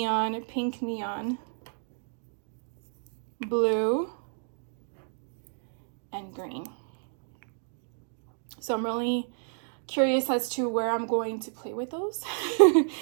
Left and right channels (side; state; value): left; silent; digital silence